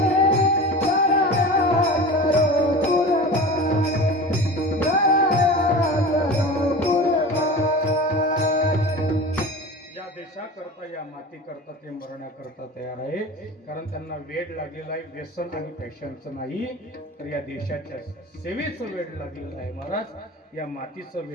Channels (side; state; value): both; normal; correlation 0.34